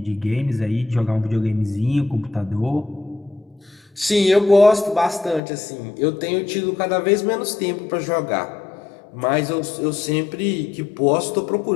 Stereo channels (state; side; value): drops out; right; at 5.4 s